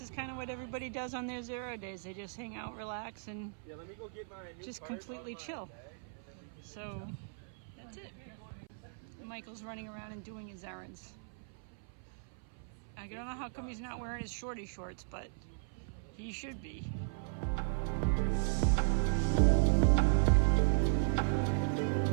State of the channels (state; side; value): silent; left; 53 dB below the other